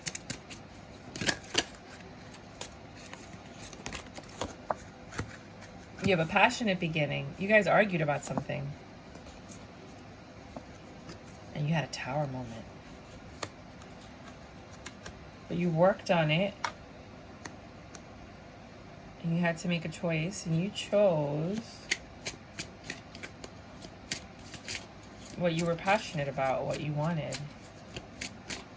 You have a passionate beginning. You guys argued about something. And you had a tower moment. But you worked on it. And you had to make a choice. And you chose what you were passionate about, what you wanted.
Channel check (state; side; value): identical; both; correlation 1.00